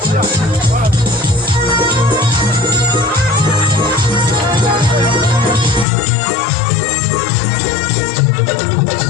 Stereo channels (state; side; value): drops out; right; at 5.9 s